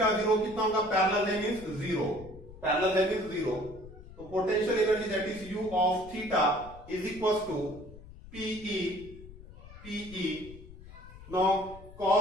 0 कितना होगा, पैरेलल है मींस 0, पैरेलल है मींस 0, तो potential energy that is u of theta is equal to PE now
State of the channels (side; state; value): left; noise; rumble, 17 dB below the sound